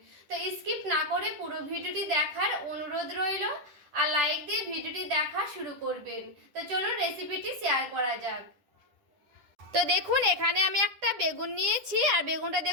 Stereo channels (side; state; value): left; late; 10 ms